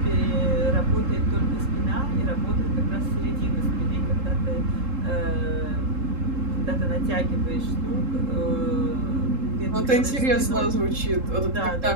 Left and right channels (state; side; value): late; left; 3.7 ms